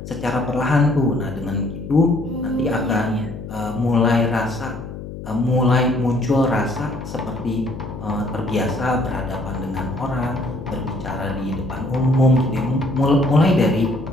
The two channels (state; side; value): noise; left; hum, 10 dB below the sound